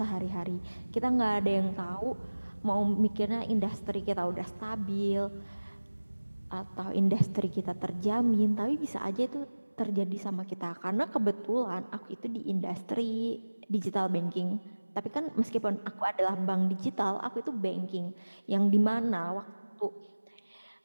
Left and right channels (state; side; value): inverted; both; correlation -1.00